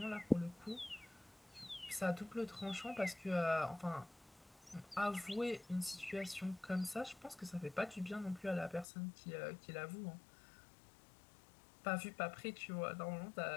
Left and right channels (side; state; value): right; drops out; at 8.8 s